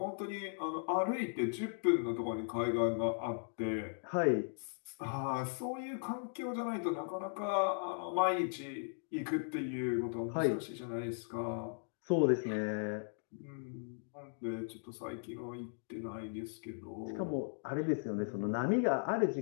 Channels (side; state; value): right; silent; digital silence